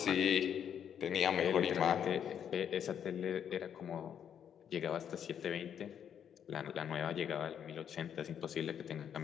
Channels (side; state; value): right; quieter; 8.7 dB